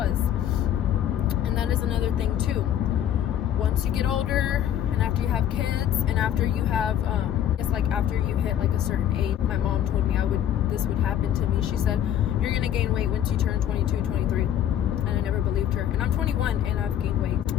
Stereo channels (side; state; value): right; quieter; 10.5 dB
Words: And that is another thing too. Once you get older, and after you have kids, and after you have it's like after you hit like a certain age, my mom told me this would happen to me. She said, you're gonna gain weight once you turn 22, 23. And I never believed her. And I'm 21 and I've gained weight.